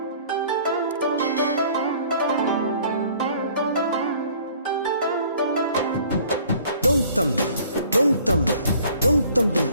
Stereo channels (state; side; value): inverted; both; correlation -0.55